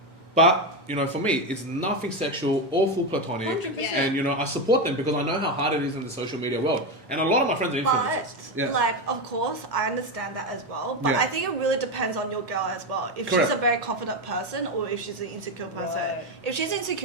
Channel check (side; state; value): both; normal; correlation 0.12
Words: But, for me, it's nothing sexual, all full platonic. 100%. And, I support them because I know how hard it is in the social media world. And a lot of my friends are influencers. But, of course, I understand that as well. But I think it really depends on your girl as well. If Correct. she's a very confident person or if she's an insecure person. Right. If she's